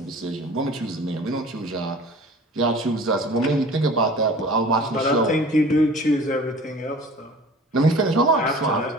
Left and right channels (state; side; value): normal; both; correlation 0.44